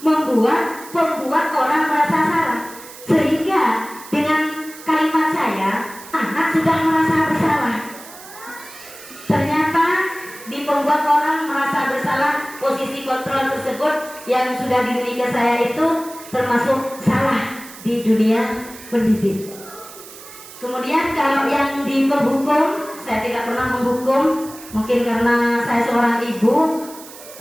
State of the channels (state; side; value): noise; right; hiss, 17 dB below the sound